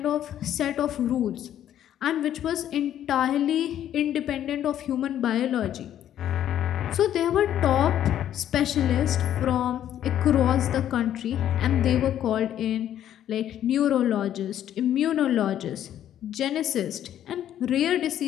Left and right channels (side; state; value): right; quieter; 11.0 dB